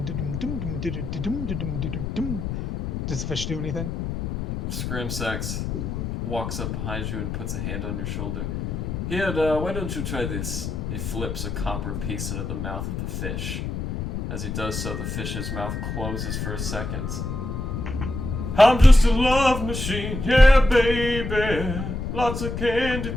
Does the fish do anything? Scramsax walks up behind you and puts a hand on your shoulder. Here, why don't you try this? He flips a copper piece into the mouth of the fish. As he does so, the fish's mouth closes for a second. I'm just a love machine, yeah, baby. Lots of candy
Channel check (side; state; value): left; noise; rumble, 4 dB below the sound